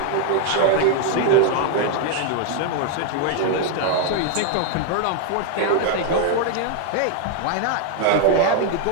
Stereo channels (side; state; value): both; different; correlation 0.00